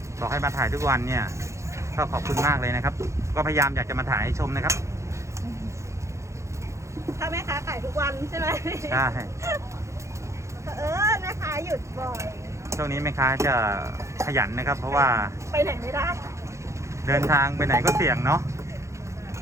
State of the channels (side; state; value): left; late; 0.14 ms